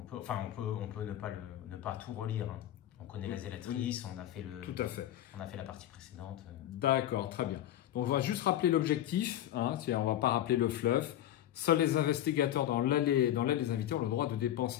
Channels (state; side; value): quieter; right; 12.3 dB